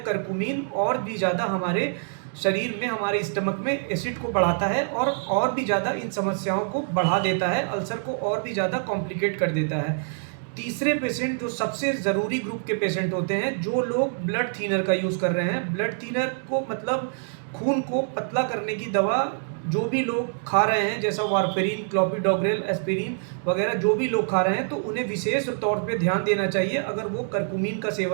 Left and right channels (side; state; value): left; silent; digital silence